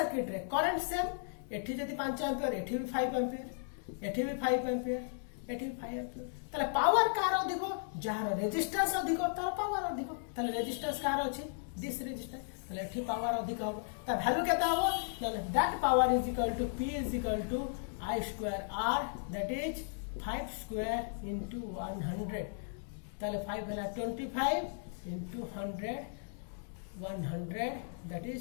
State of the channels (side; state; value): right; silent; digital silence